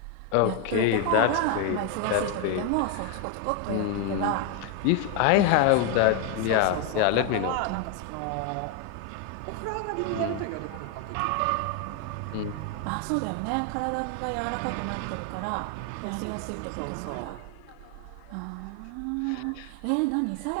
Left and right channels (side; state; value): both; different; correlation 0.01